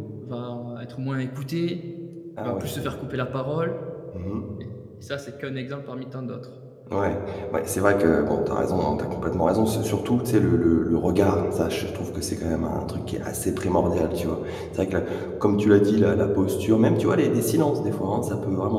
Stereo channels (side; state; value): both; identical; correlation 1.00